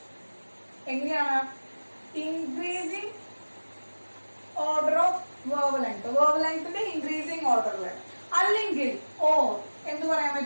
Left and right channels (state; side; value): inverted; both; correlation -1.00